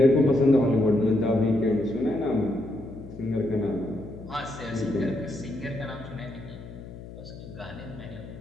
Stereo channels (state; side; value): noise; left; hum, 14 dB below the sound